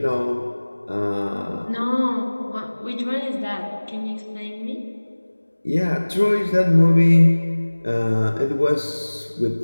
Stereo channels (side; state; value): both; inverted; correlation -1.00